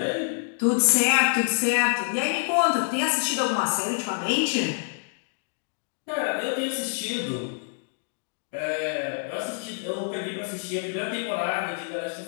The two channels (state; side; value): silent; right; digital silence